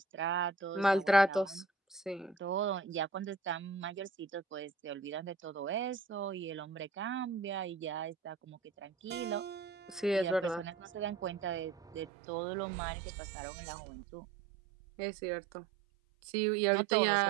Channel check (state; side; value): drops out; left; at 12.1 s